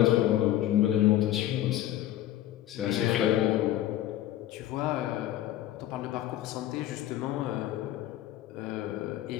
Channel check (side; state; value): right; quieter; 13.4 dB